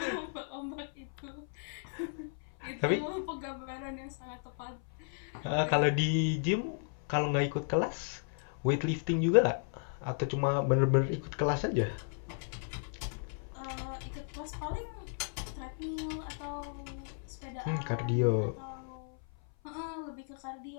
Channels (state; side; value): silent; right; 55 dB below the other